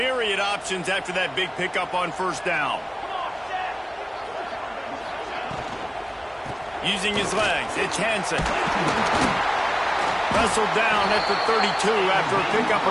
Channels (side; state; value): both; identical; correlation 1.00